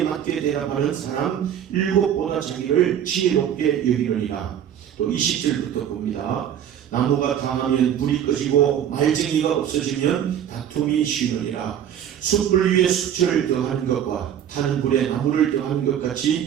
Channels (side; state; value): left; quieter; 9.6 dB